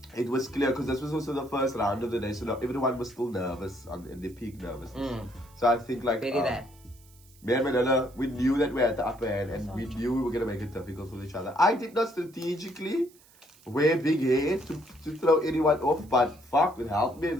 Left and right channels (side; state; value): right; noise; hiss, 27 dB below the sound